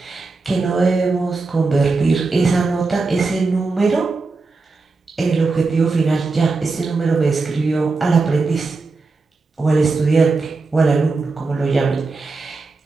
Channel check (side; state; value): left; quieter; 3.9 dB